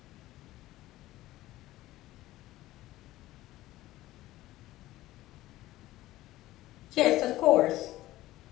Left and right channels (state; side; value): quieter; right; 16.3 dB